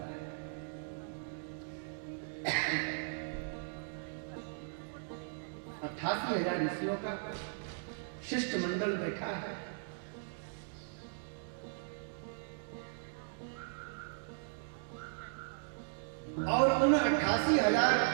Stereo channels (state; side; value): silent; left; digital silence